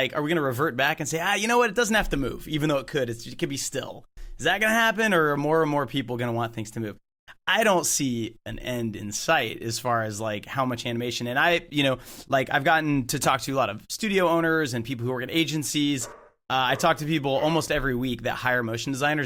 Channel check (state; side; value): identical; both; correlation 1.00